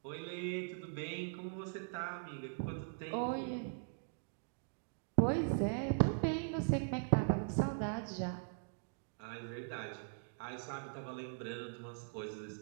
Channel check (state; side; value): silent; left; digital silence